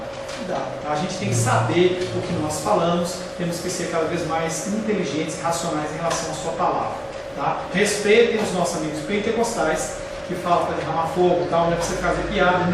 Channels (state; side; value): identical; both; correlation 1.00